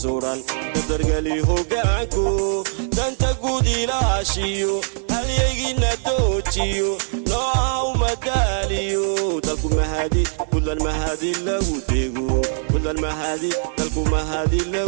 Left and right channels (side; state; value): left; silent; 59 dB below the other